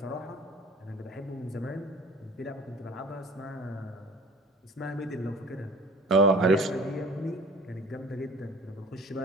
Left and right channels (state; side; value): normal; both; correlation 0.48